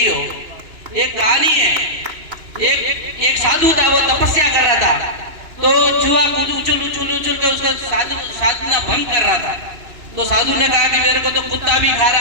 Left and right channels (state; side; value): late; left; 2.9 ms